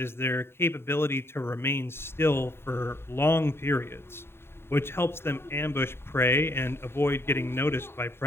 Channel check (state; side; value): late; right; 0.11 ms